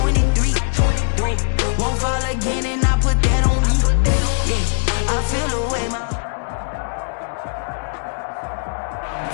Won't fall again and I put that on me. Yeah. I feel the way my...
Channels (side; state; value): right; silent; digital silence